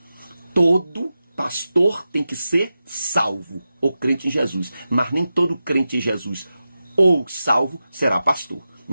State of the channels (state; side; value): inverted; both; correlation -0.92